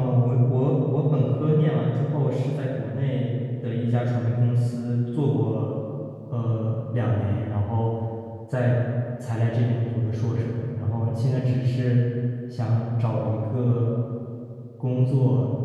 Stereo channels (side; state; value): both; identical; correlation 1.00